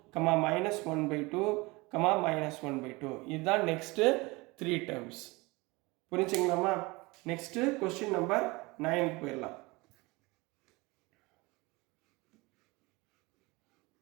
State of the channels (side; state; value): left; quieter; 23.9 dB